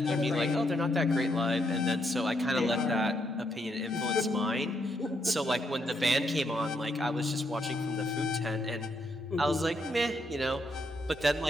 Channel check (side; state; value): both; normal; correlation 0.77